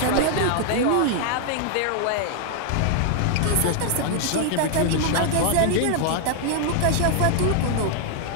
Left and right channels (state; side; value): different; both; correlation 0.00